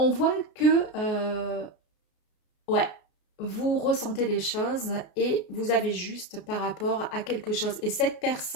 voit que, ouais, vous ressentez les choses et vous avez juste par rapport à quelque chose. Et cette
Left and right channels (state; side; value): late; right; 33 ms